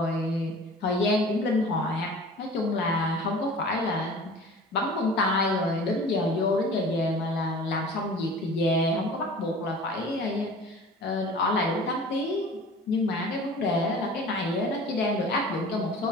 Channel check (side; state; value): both; normal; correlation 0.42